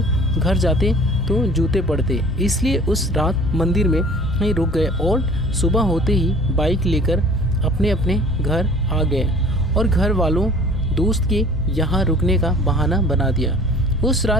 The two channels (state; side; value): normal; both; correlation 0.48